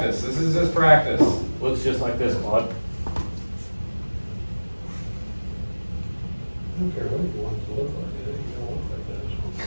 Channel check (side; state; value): both; inverted; correlation -1.00